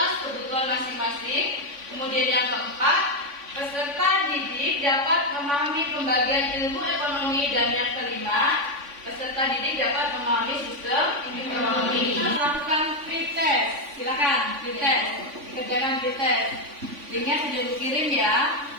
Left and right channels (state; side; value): late; left; 3.5 ms